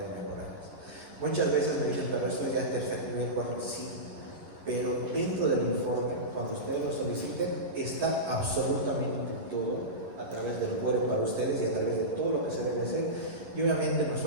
mejorarlas. Muchas veces me dicen, pero eso es ya tercer nivel, cuarto, sí. Pero dentro del informe, cuando ustedes lo soliciten, está absolutamente todo a través del web para ustedes y a través de todo lo que se debe hacer. Y obviamente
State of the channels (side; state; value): left; late; 11 ms